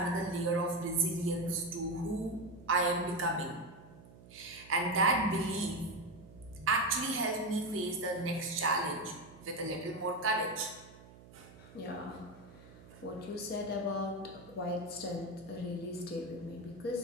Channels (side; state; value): right; noise; hum, 20 dB below the sound